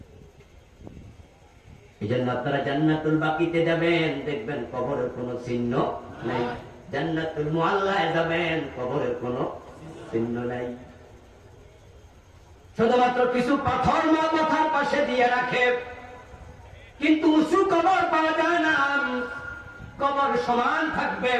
এই জন্য আপনারা জান্নাতুল বাকিতে যাবেন, দেখবেন কবরের কোনো চিহ্ন নাই। জান্নাতুল মুআল্লায় যাবেন, কবরের কোনো চিহ্ন নাই। শুধুমাত্র কিছু পাথর মাথার পাশে দিয়ে রাখে, কিন্তু উঁচু কবর পাওয়া যায় না। কবর সমান থাকবে।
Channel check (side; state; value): both; identical; correlation 1.00